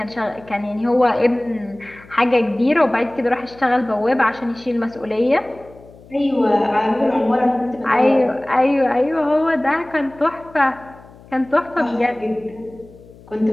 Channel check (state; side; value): noise; left; hum, 23 dB below the sound